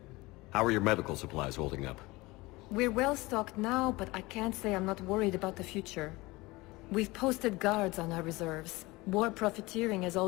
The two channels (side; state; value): right; quieter; 21.9 dB